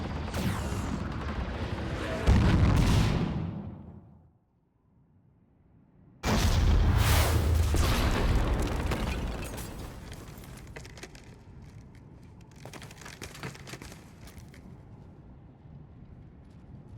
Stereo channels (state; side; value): identical; both; correlation 1.00